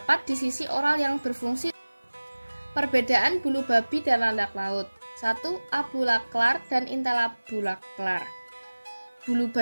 di sisi oral yang berfungsi. Perbedaan bulu babi dan landak laut. 1. Abulaklar dan intelabulaklar. Bulu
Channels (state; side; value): inverted; both; correlation -1.00